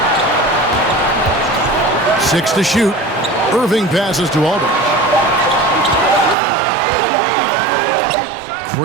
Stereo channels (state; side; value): drops out; left; at 6.4 s